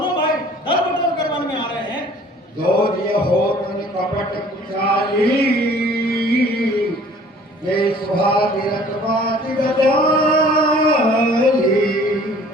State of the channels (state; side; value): normal; both; correlation 0.52